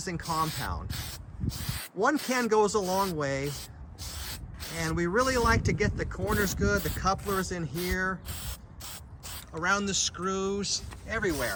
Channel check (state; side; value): identical; both; correlation 1.00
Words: compound. One can goes a long way, and we really like to get the corners good, the couplers in here, around the screws,